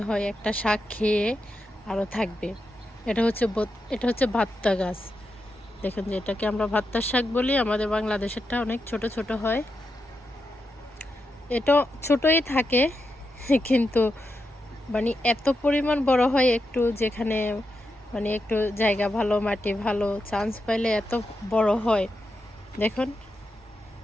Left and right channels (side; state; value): both; normal; correlation 0.86